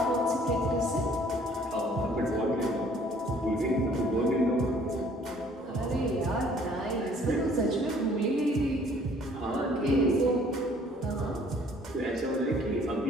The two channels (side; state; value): both; normal; correlation 0.57